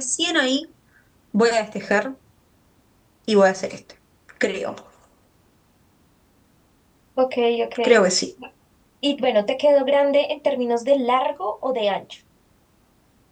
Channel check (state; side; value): identical; both; correlation 1.00